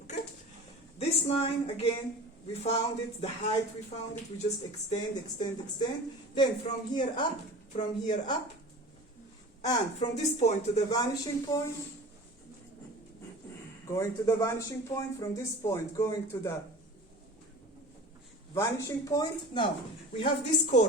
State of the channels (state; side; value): normal; both; correlation 0.38